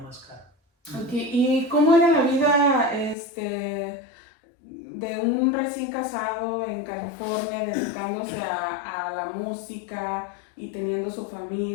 cara. ¿Y cómo era la vida de un recién casado en California dedicándose a la música y teniendo su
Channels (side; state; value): right; drops out; at 3.2 s